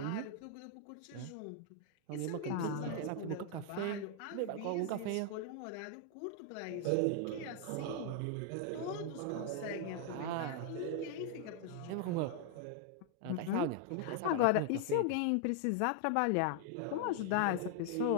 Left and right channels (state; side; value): different; both; correlation 0.00